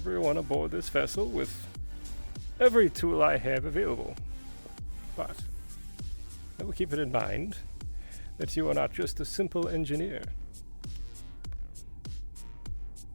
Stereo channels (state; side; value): inverted; both; correlation -1.00